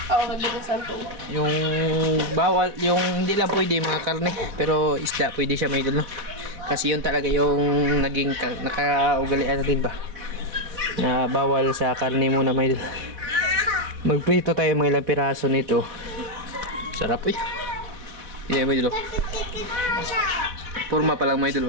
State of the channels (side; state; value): left; late; 4.0 ms